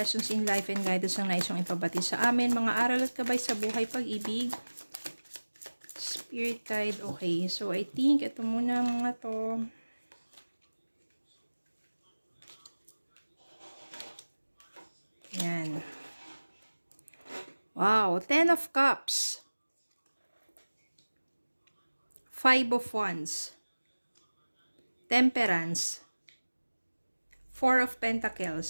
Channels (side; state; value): both; inverted; correlation -1.00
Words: in life and guidance ang nais yung ipabati sa amin. Mga aral at gabay sa buhay, pag-ibig. Spirit guide. Okay. So, I think ito muna mga to. Yan. Wow. 10 of Cups. 5 of Wands. Temperance. 4 of